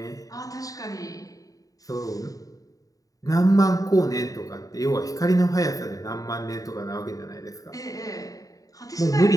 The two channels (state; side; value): late; right; 0.17 ms